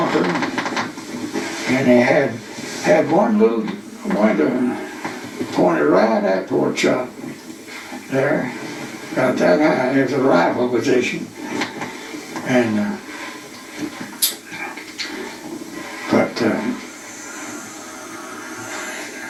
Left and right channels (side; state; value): both; identical; correlation 1.00